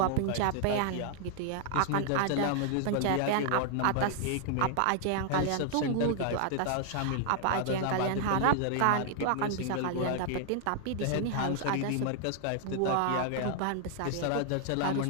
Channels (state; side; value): different; both; correlation 0.00